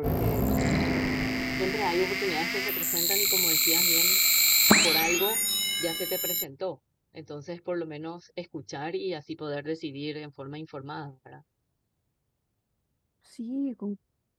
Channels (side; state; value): both; identical; correlation 1.00